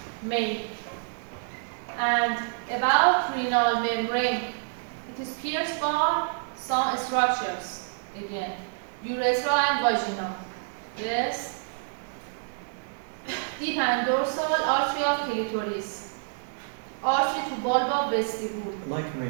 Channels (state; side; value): silent; left; digital silence